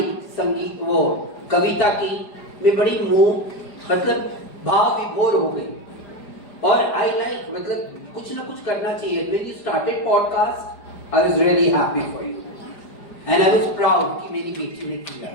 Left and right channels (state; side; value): late; right; 4.9 ms